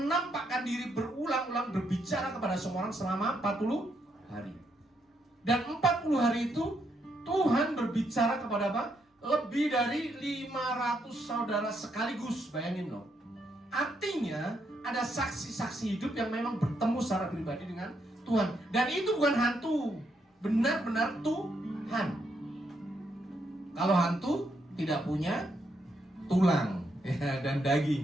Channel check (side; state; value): both; normal; correlation 0.78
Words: diri berulang-ulang berbicara kepada semua orang selama 40 hari. Dan 40 hari itu Tuhan berbicara kepada apa? Lebih dari 500 saudara sekaligus. Bayangin loh. Artinya ada saksi-saksi hidup yang memang bertemu secara pribadi dengan Tuhan. Dan itu bukan hantu, benar-benar Tuhan. Kalau hantu tidak punya tulang ya, dan